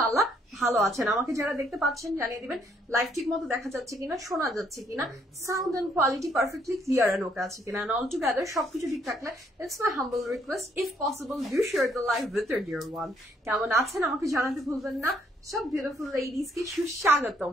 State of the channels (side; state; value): both; normal; correlation 0.69